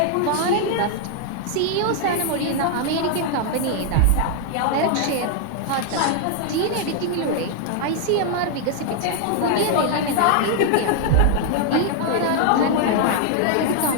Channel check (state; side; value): different; both; correlation 0.00